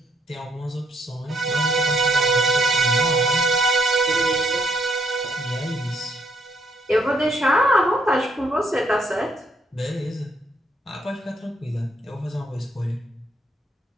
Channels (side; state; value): both; normal; correlation 0.71